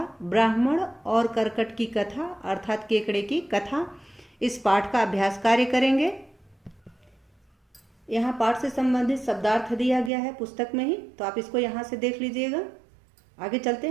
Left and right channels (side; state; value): left; drops out; at 10.1 s